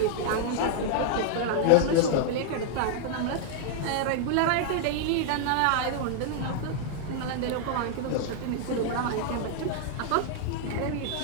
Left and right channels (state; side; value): different; both; correlation -0.01